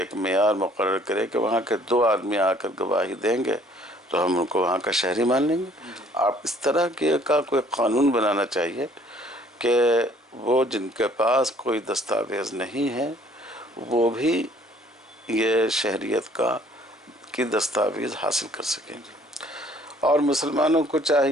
معیار مقرر کرے کہ وہاں کے 2 آدمی آ کر گواہی دیں گے تو ہم ان کو وہاں کا شہری مان لیں گے. آپ اس طرح کا کوئی قانون بنانا چاہیے کہ وہ جن کے پاس کوئی دستاویز نہیں ہے وہ بھی یہ شہریت کی دستاویز حاصل کر سکیں. اور مسلمانوں کو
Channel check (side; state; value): both; normal; correlation 0.58